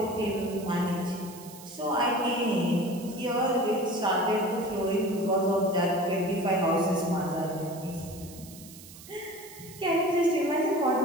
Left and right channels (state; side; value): noise; right; hiss, 18 dB below the sound